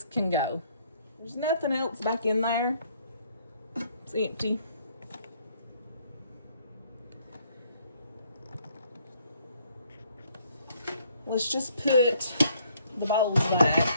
can go. There's nothing else back in there. It's empty. Let's just put the bowls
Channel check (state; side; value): inverted; both; correlation -0.65